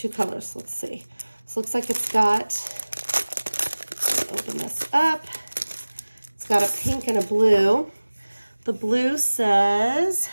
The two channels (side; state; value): both; inverted; correlation -1.00